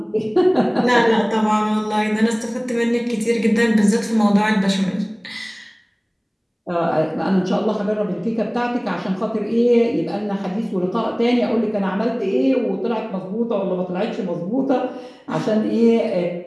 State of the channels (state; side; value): identical; both; correlation 1.00